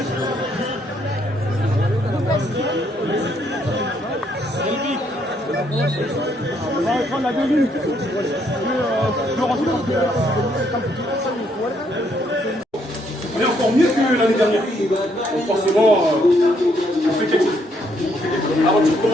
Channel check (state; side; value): normal; both; correlation 0.71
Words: On va reprendre la 2 minutes. On est encore mieux que l'année dernière. Donc forcément, on fait quelque chose. L'aventure